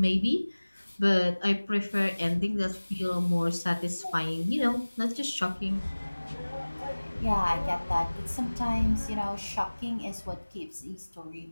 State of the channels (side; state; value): both; inverted; correlation -1.00